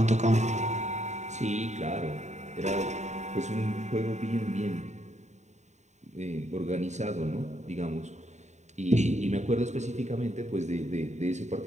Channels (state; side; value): late; left; 0.34 ms